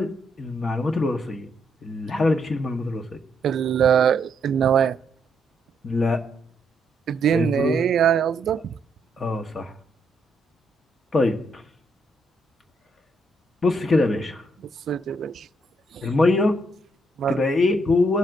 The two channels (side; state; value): both; normal; correlation 0.75